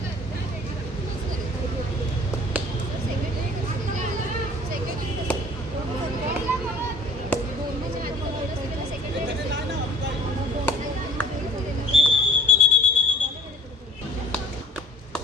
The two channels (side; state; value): both; normal; correlation 0.49